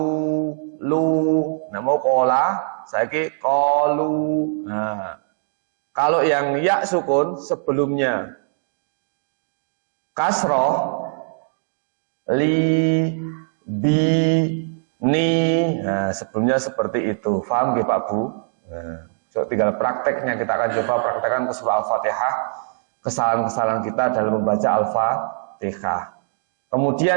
lu. Nah, mau kola, saiki kolu. Nah, kalau yang ya sukun sebelumnya kasroh, li, bi, ni. Nah, sebelumnya seperti itu. Paham nggih Pak Bu? Nah, so tinggal prakteknya, kita akan coba praktekkan ke surah Al-Fatihah, kesalahan-kesalahan kita dalam membaca Al-Fatihah.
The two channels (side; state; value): left; silent; digital silence